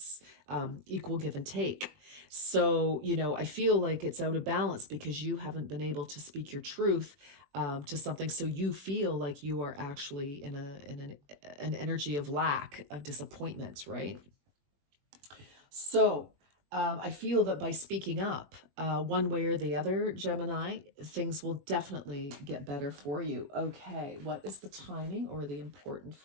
equal give and take. So, I feel like it's out of balance because you haven't been able to speak your truth to something. So you feel like you are actually in an energy of lack, of disappointment, right? So I feel that by speaking up one way or the other, Gemini, things will definitely get better for you. Okay, what is the timing or the important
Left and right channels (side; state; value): left; late; 21 ms